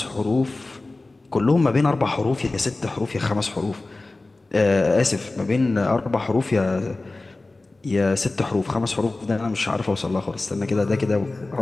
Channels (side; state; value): right; quieter; 3.2 dB